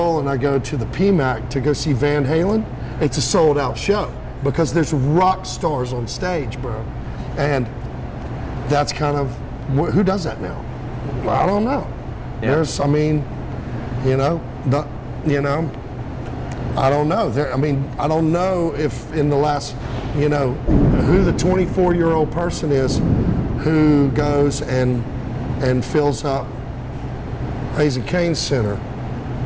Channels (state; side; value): identical; both; correlation 1.00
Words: and I go to the PMAC to go see Van Halen, it's a sold out show because there's rock stars on stage, bro. And that's kind of, who does that now? I don't know. Yeah. I don't know. I don't know if in the last, who the 24-year-old person is who goes and fills up Raising Cane Center